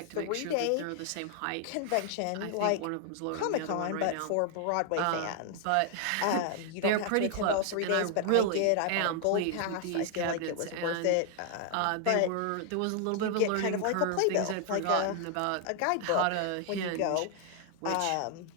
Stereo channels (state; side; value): different; both; correlation 0.00